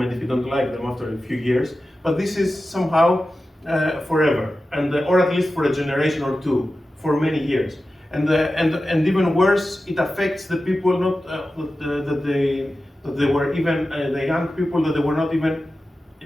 if you don't like them after a few years, but this is somehow forever, and or at least for a generation or two, for many years. And even worse, it affects the people not that they were even the young people that they were not even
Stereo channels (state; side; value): normal; both; correlation 0.93